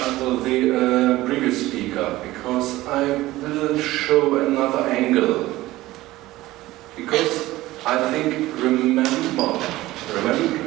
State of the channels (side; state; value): left; quieter; 17.4 dB